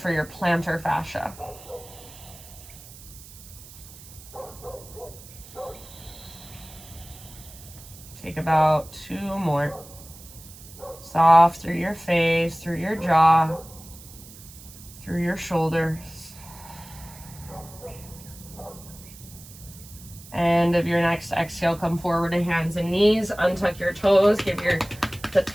your plantar fascia. Take about 2 more. Soft through your face, through your jaw, through your shoulders. End of your next exhale, come forward to hands and knees. Untuck your toes. Give the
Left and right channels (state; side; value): noise; right; hiss, 18 dB below the sound